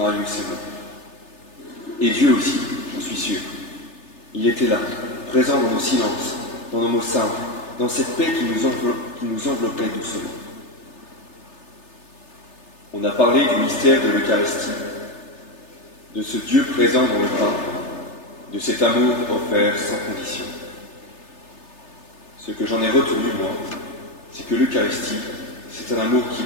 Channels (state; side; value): late; right; 3.3 ms